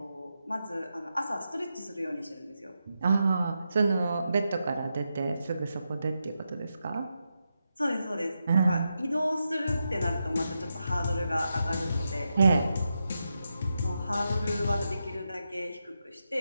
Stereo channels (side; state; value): both; inverted; correlation -0.86